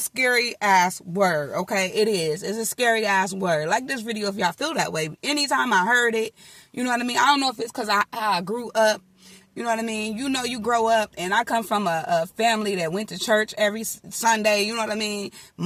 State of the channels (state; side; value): identical; both; correlation 1.00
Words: ass word, okay? It is. It's a scary ass word. Like this video, if y'all feel that way. Anytime I heard it, you know what I mean? I don't know if it's because I grew up, you know what I mean? You know, you grow up, and I come from a family that went to church every Sunday, you know what I mean?